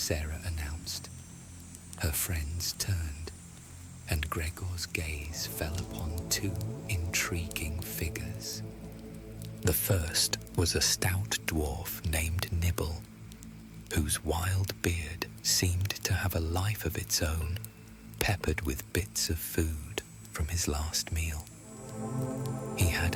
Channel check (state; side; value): identical; both; correlation 1.00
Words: announced. Her friends turned, and Gregor's gaze fell upon two intriguing figures. The first was a stout dwarf named Nibble, whose wild beard seemed to have a life of its own, peppered with bits of food from his last meal. He